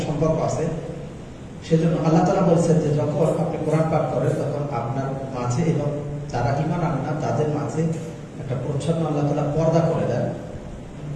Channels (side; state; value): both; identical; correlation 1.00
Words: সম্পর্ক আছে। সেজন্য আল্লাহ তাআলা বলছেন যে যখন আপনি কোরআন পাঠ করেন তখন আপনার মাঝে এবং যারা ঈমান আনে না তাদের মাঝে একটা প্রচ্ছন্ন আল্লাহ তাআলা পর্দা করে দেন,